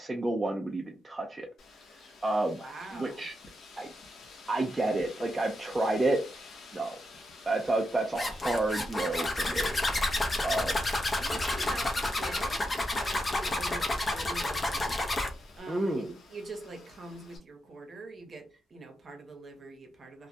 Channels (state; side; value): normal; both; correlation 0.85